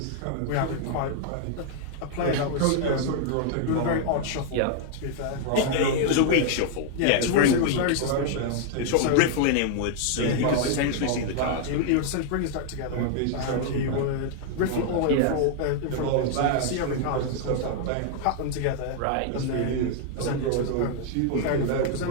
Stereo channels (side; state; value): both; different; correlation -0.01